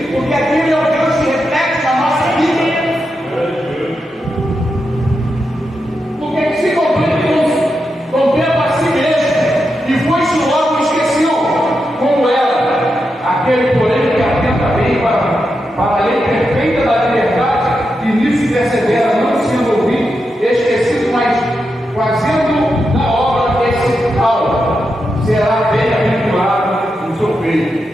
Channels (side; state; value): both; normal; correlation 0.87